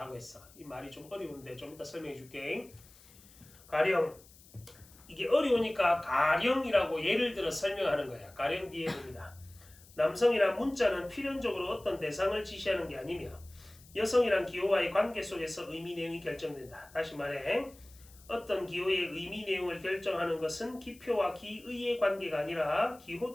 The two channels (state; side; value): noise; left; hiss, 24 dB below the sound